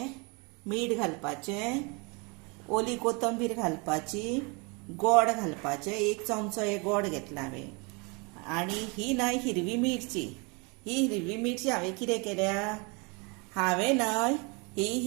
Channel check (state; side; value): quieter; left; 30.5 dB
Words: मीठ घालपाचें, ओली कोथंबीर घालपाची, गोड घालपाचें, 1 चमचो हे गोड घेतला हांवें। आनी ही न्हय हिरवी मिरची, ही हिरवी मिरची हांवें कितें केल्या, हांवें न्हय ही